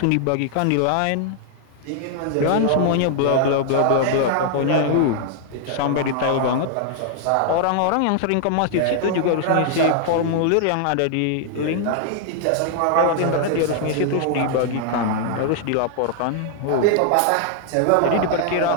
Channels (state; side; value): different; both; correlation 0.00